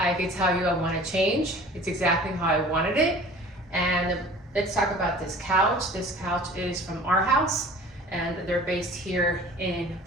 could tell you I wanna change. It's exactly how I wanted it. And let's talk about this couch. This couch is from our house and they're based here in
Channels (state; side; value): normal; both; correlation 0.45